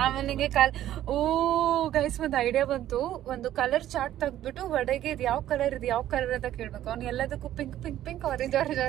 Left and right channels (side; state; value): left; quieter; 12.6 dB